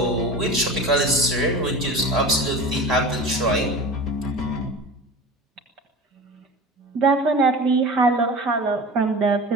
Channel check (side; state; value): both; normal; correlation 0.34